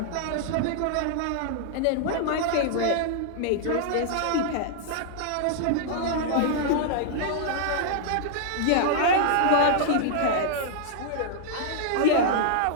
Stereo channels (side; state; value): both; different; correlation -0.01